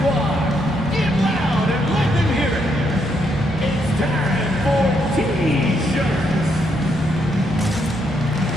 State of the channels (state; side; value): normal; both; correlation 0.76